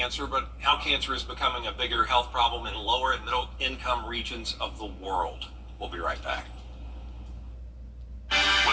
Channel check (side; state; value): both; identical; correlation 1.00